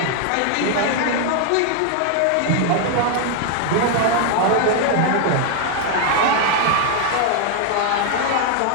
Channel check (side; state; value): both; different; correlation 0.00